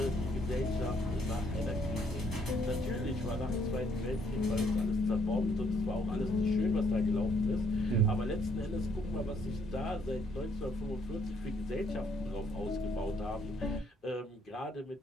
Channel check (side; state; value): both; normal; correlation 0.68